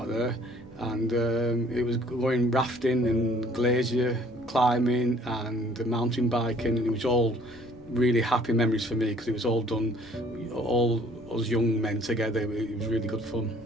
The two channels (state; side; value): normal; both; correlation 0.58